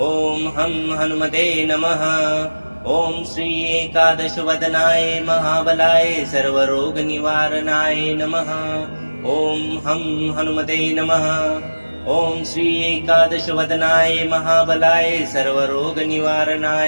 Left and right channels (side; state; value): both; inverted; correlation -1.00